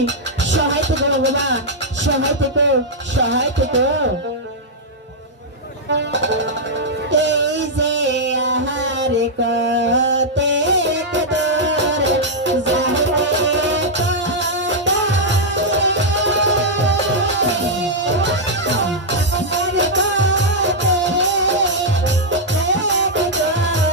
সহায় থেকো ভগবান, সহায় থেকো, সহায় থেকো। এই যে আহার কতে কদর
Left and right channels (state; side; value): normal; both; correlation -0.05